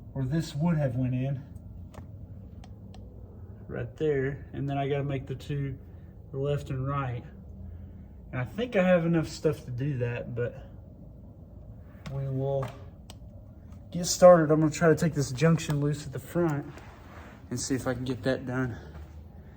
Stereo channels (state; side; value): identical; both; correlation 1.00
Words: where this would have went in. Right there. And then I got to make the two, the left and right. And I think I have enough stuff to do that, but we will get started. I'm going to try to take this junction loose at the front and see if I can get that done.